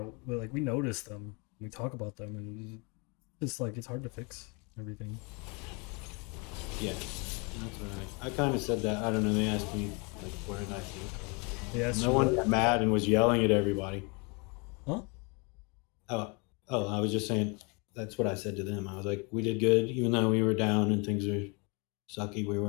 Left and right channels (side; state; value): right; quieter; 31.5 dB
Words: like we notice them, we talk about them, and it's like it's hard to fix everything. Yeah, that's what I kind of said that. I don't know. They asked me like, what did I think? Yeah, No one got mad and was yelling at everybody. Huh? Oh, I was just saying. That's what I said to them. I was like, we did good, even though we were down and things were sucky. We